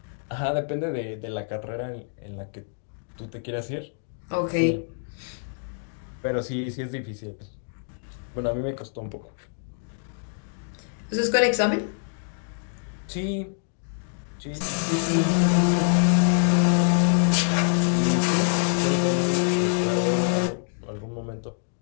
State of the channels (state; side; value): silent; right; digital silence